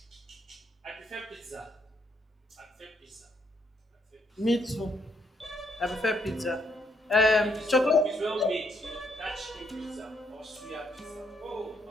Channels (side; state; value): both; normal; correlation 0.73